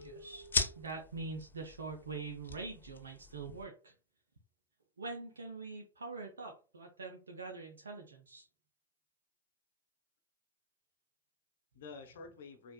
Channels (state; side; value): inverted; both; correlation -0.47